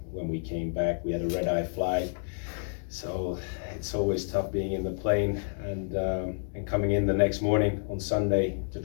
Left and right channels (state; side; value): silent; right; digital silence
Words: when we came back, we had a red-eye flag. So it's always tough being in the plane and coming in the next morning on Sunday to